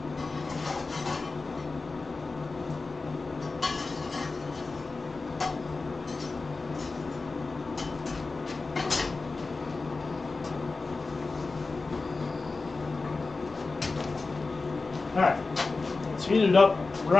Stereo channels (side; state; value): right; quieter; 3.8 dB